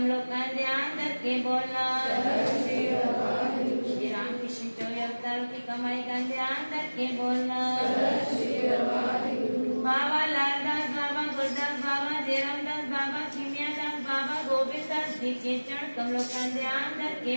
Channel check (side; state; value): both; inverted; correlation -1.00